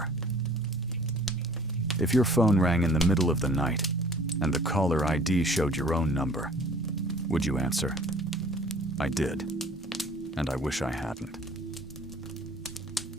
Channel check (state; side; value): normal; both; correlation 0.51